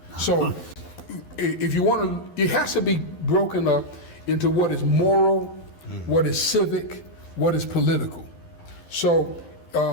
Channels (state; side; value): late; right; 12 ms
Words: So if you want to, it has to be broken up into what is moral, what is civic, what is political. So